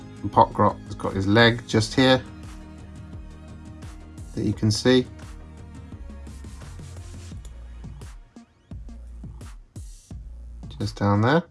the Pot-grot has got his leg just here that you can see. Just down there.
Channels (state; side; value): identical; both; correlation 1.00